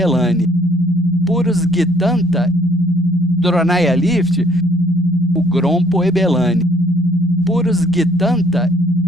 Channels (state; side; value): normal; both; correlation 0.61